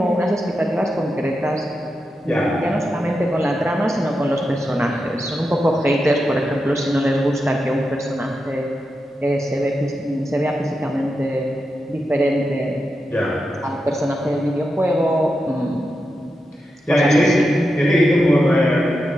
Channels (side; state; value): both; normal; correlation 0.88